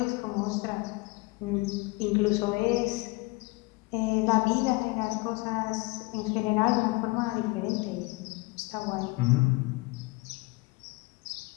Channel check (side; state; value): right; quieter; 24.5 dB